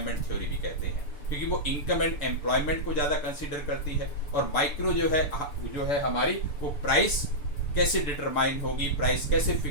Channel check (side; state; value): right; late; 6.9 ms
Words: थ्योरी भी कहते हैं, क्योंकि वो इनकम एंड एम्प्लॉयमेंट को ज़्यादा कंसीडर करती है। और माइक्रो जो है हमारी वो प्राइस कैसे डिटरमाइन होगी, प्राइस कैसे